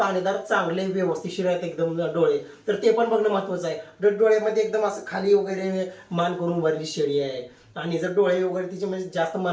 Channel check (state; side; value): identical; both; correlation 1.00